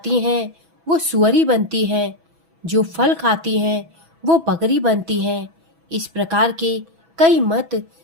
हैं वो सुअरी बनती हैं। जो फल खाती हैं वो बकरी बनती है। इस प्रकार के कई मत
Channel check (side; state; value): left; late; 6.1 ms